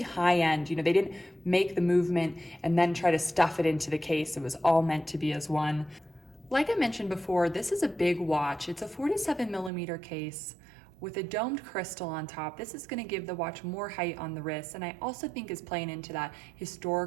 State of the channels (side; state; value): left; drops out; at 9.7 s